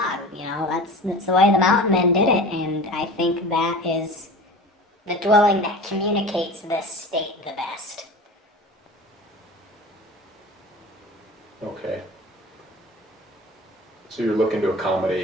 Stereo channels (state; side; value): normal; both; correlation 0.36